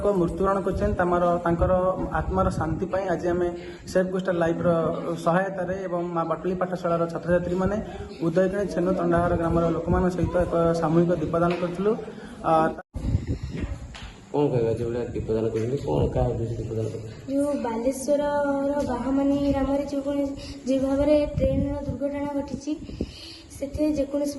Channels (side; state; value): both; identical; correlation 1.00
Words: मृत्युवरण कर आत्मार शांति आज आम सेफ कोस्टाल लाइफ सहायतार माँ बाटली पाठशाला छात्र छात्री मैंने उदयगिणी छेनु तंडाहार ग्राम लोक सहित एक सामूहिक दीपदान करूँ। कौन कहवा जो दीपदान करेंगे कौन क्या उद्देश्य दीपदान कर जो बालेश्वर बाहामानी ग्राम जो भाव में ट्रेन दुर्घटना घटी से जेकोसी